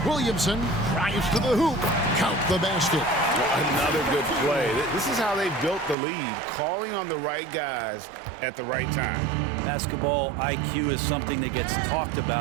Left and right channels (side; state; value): left; drops out; at 6.0 s